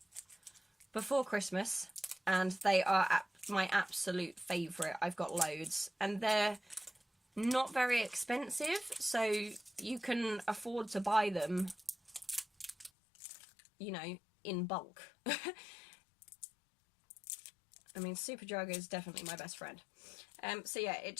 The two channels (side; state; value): right; drops out; at 12.9 s